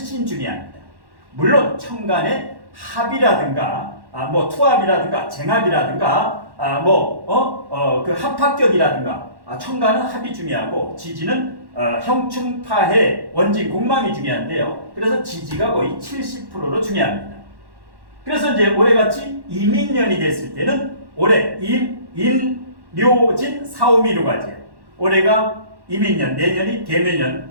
중요합니다. 물론 천간의 합이라든가 투합이라든가 쟁합이라든가 그 합합격이라든가 천간은 합이 중요하고 지지는 형충파해 원진 공망이 중요한데요. 그래서 지지가 거의 70%로 중요합니다. 그래서 이제 올해같이 이민년이 됐을 때는 올해 묘진 사오미로 가죠. 올해가 이민년, 내년이 개묘년,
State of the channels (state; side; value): late; left; 1.1 ms